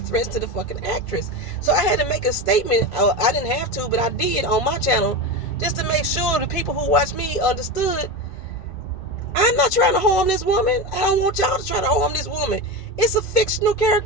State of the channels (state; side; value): late; right; 2.3 ms